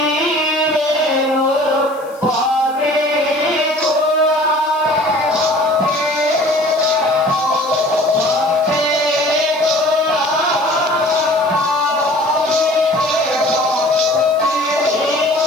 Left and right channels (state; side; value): noise; left; hiss, 26 dB below the sound